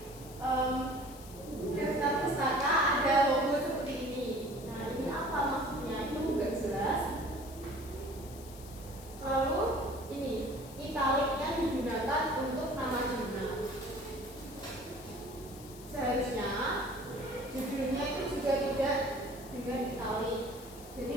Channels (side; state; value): left; noise; hiss, 18 dB below the sound